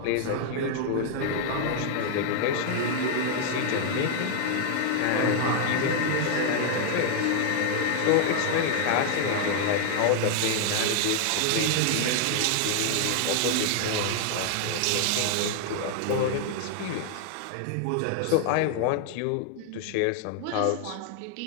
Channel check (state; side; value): different; both; correlation 0.00